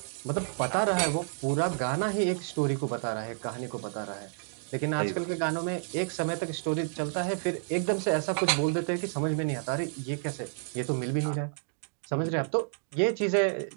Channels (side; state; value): left; silent; digital silence